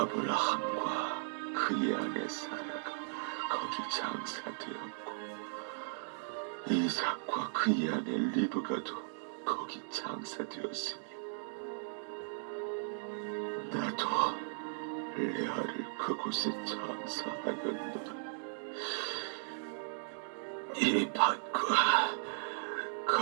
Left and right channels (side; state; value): left; silent; digital silence